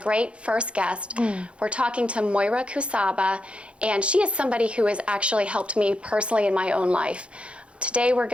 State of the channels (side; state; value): left; late; 0.059 ms